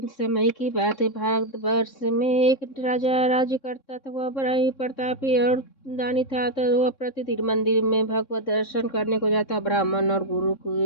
समय की बात है। भारतवर्ष में एक राजा राज्य करता था। वह बड़ा ही प्रतापी और दानी था। तो वह प्रतिदिन मंदिर में भगवत दर्शन करने को जाता। ब्राह्मण और गुरु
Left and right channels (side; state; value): right; late; 3.6 ms